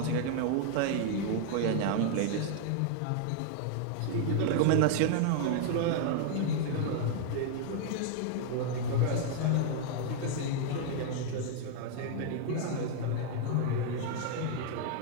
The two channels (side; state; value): both; different; correlation -0.01